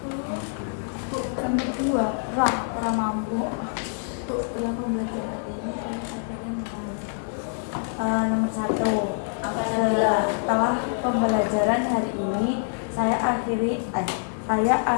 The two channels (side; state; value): right; silent; 61 dB below the other